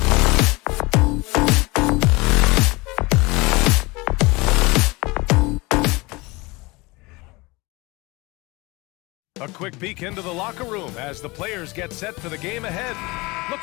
quick peek into the locker room as the players get set for the game ahead.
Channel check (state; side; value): quieter; right; 24.0 dB